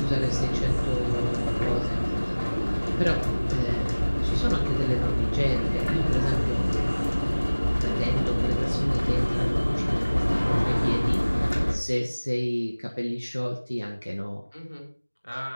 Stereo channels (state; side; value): inverted; both; correlation -1.00